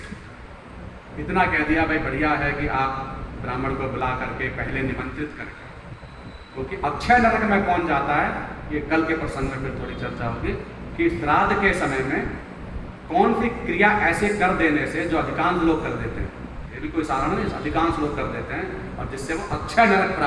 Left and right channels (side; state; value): both; identical; correlation 1.00